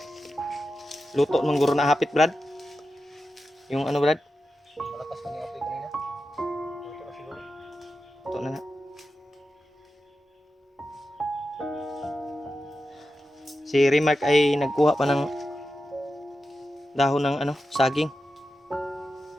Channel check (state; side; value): normal; both; correlation 0.91